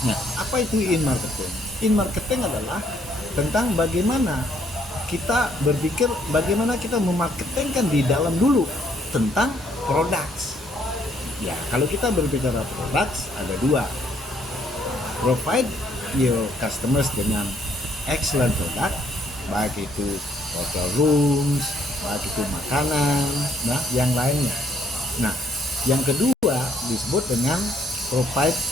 Nah, apa itu in-marketing? In-marketing adalah tentang bagaimana kita berpikir bagaimana kita memarketingkan di dalam dulu tentang products. Ya, kalau kita berbicara products ada 2. Provide your customers dengan excellent product, baik itu hotel rooms, baik itu makanan, nah yang lainnya. Nah, yang kedua disebut dengan provide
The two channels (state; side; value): normal; both; correlation 0.68